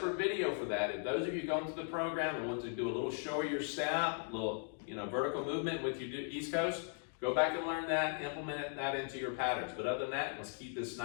video for that. If those of you going through the program and want to do a little show of your step, a little vertical movement with your East Coast, go back and learn that, implement that into your patterns. But other than that, let's keep this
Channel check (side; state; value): right; silent; 52 dB below the other